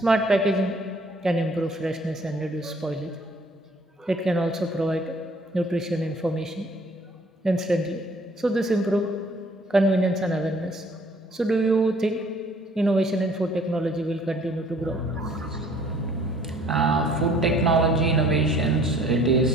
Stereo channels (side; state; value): both; normal; correlation 0.57